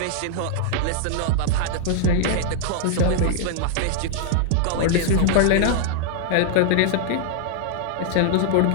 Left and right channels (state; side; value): different; both; correlation 0.00